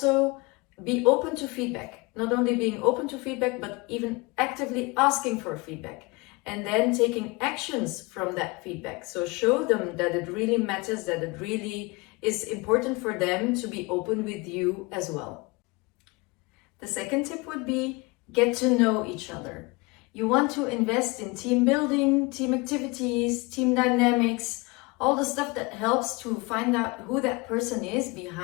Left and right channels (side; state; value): right; quieter; 26.1 dB